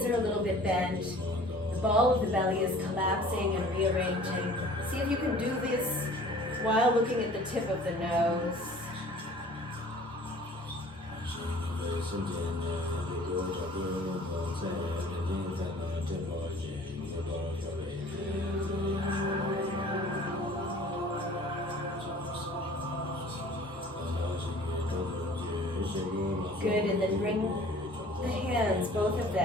are a little bit bent. The ball of the belly is collapsing and rearranging. See if you can do this while looking at the tip of the nose. Good, and then bring the hands, both of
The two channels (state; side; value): normal; both; correlation 0.48